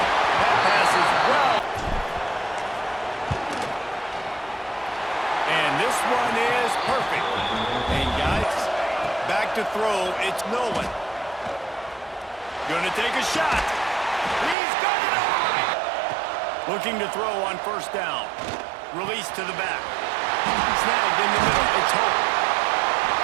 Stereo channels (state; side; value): drops out; left; at 14.6 s